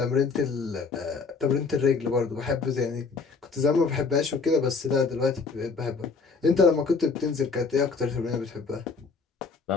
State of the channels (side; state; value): right; quieter; 4.7 dB